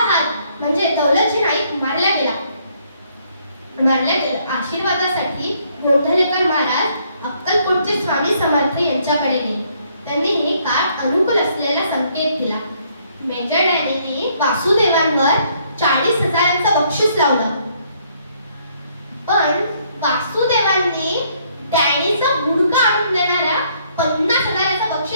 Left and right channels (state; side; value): inverted; both; correlation -0.67